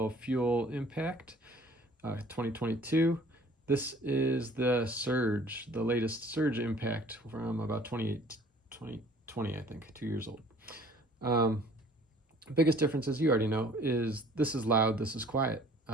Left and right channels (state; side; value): normal; both; correlation 0.53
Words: fuel impact 2022. This is the Surge, the latest Surge impact from about 2020, I think, 2 years old. Biggest difference, as you already know, is this is loud, this is quiet.